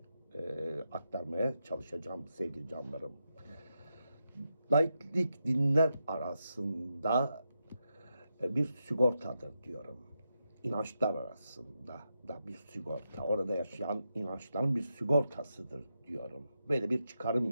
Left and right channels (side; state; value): both; inverted; correlation -0.85